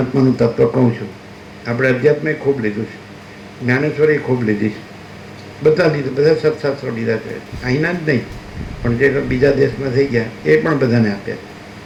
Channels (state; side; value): identical; both; correlation 1.00